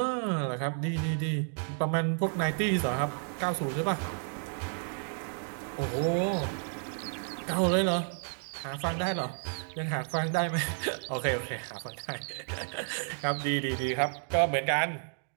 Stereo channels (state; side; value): silent; left; 56 dB below the other